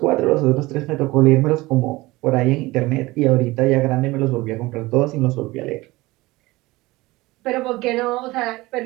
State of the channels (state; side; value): quieter; left; 20.4 dB